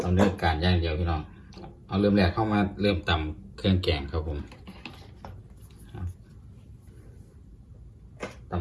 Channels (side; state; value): both; identical; correlation 1.00